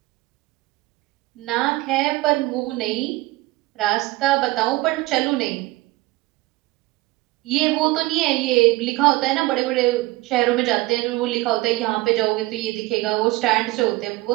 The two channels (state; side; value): quieter; left; 19.6 dB